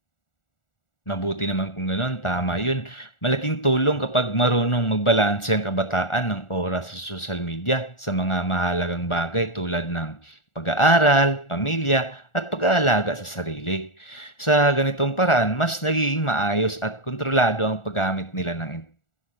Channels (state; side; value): late; right; 1.4 ms